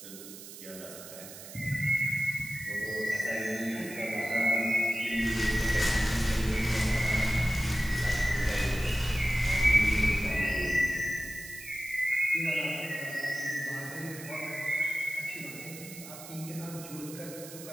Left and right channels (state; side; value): noise; right; hiss, 14 dB below the sound